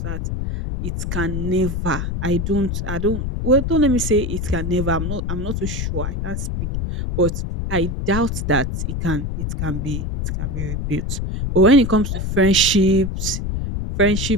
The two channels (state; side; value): noise; left; rumble, 2 dB below the sound